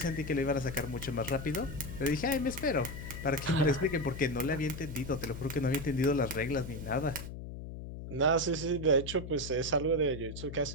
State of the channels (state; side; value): noise; left; hum, 9 dB below the sound